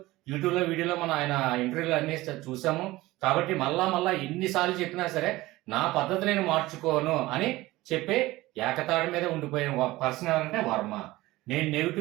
యూట్యూబ్లో వీడియోలో మనం ఆయన ఇంటర్వ్యూలు అన్ని చూసాము. కాబట్టి మళ్ళా ఎన్నిసార్లు చెప్పినా సరే నా పద్ధతి నేను మార్చుకోను అని చెప్పే ఏకతాడి మీద ఉండిపోయిన పర్సన్ ఎవరంటే వర్మ. నేను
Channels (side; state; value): left; quieter; 18.6 dB